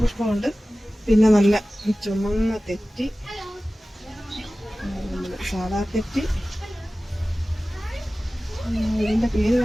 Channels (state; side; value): normal; both; correlation 0.97